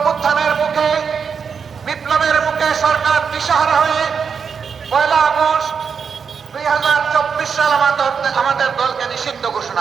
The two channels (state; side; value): quieter; left; 6.3 dB